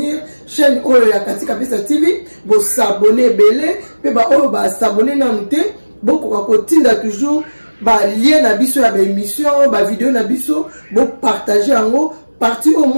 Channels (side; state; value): both; inverted; correlation -1.00